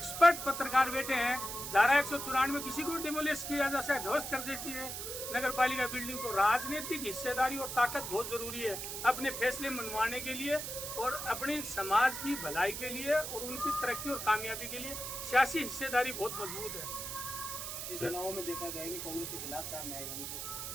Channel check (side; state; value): right; noise; hiss, 6 dB below the sound